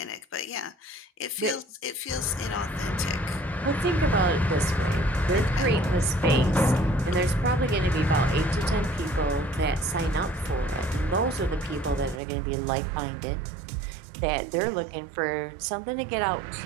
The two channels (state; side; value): drops out; left; at 12.2 s